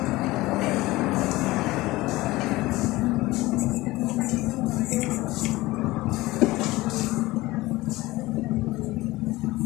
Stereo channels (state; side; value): quieter; right; 19.3 dB